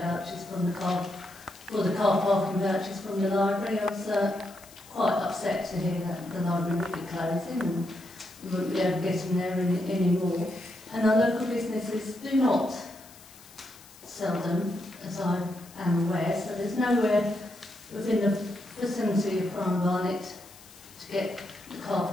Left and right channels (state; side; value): noise; left; hiss, 22 dB below the sound